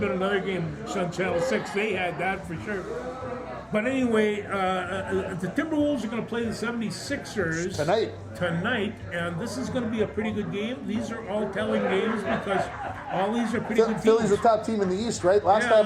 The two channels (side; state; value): both; identical; correlation 1.00